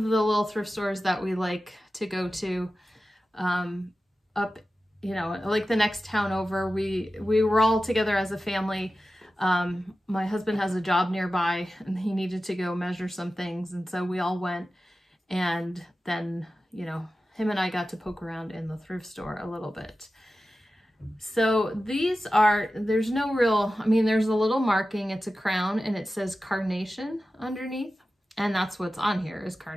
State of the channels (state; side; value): normal; both; correlation 0.94